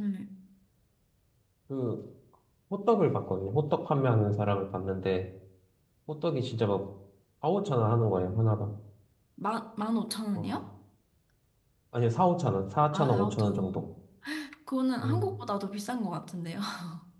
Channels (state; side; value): identical; both; correlation 1.00